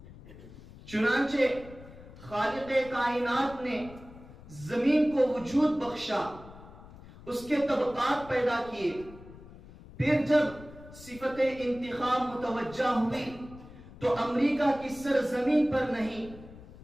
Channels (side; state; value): left; noise; rumble, 18 dB below the sound